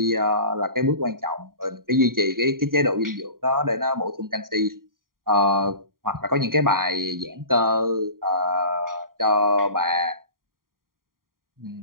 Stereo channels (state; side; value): late; left; 0.91 ms